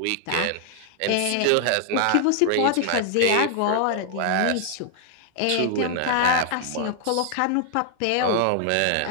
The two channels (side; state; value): both; different; correlation 0.00